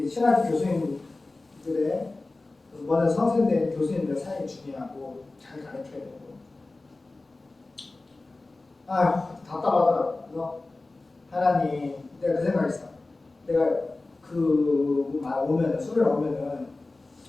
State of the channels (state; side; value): quieter; right; 3.2 dB